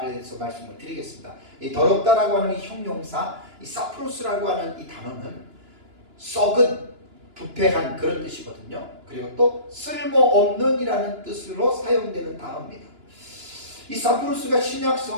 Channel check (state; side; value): late; left; 2.9 ms